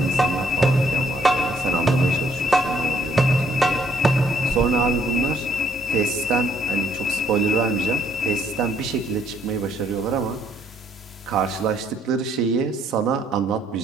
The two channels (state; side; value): normal; both; correlation 0.67